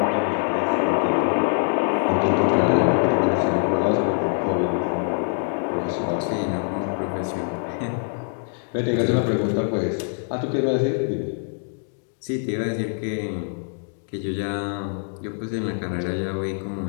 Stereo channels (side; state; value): right; silent; 63 dB below the other